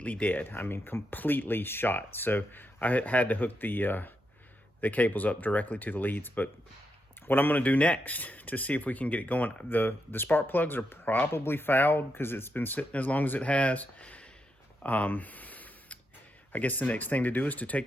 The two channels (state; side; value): normal; both; correlation 0.83